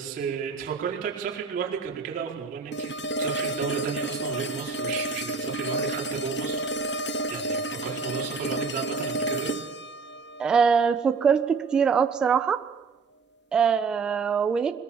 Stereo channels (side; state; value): left; quieter; 4.9 dB